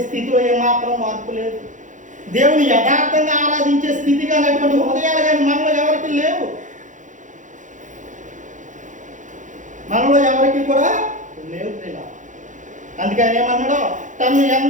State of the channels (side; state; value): left; late; 0.36 ms